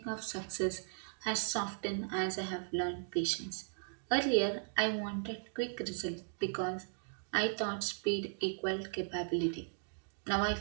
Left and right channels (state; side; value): silent; left; digital silence